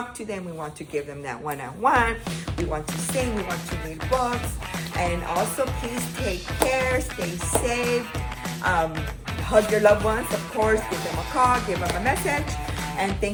to them. We want to give them that one-on-one. We want to sing. We want to read books. And also, please take care. Stay safe. Hug your loved ones, of course. Give them a call. Give them a message. And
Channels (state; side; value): identical; both; correlation 1.00